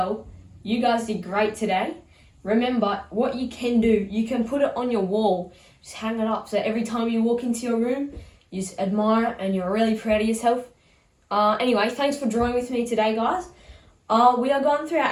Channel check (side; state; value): both; identical; correlation 1.00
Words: You guys did great today. Remember, what you can do, you can put it on your wall, just hang it up, so every time you walk into your room, you just admire it and you're really proud of yourself. Anyway, thanks for drawing with me today guys. We are going through our